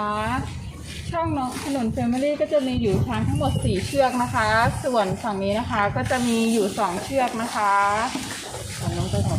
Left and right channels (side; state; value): both; identical; correlation 1.00